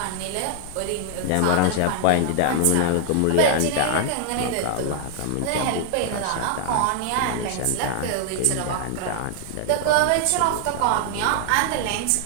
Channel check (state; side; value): different; both; correlation -0.01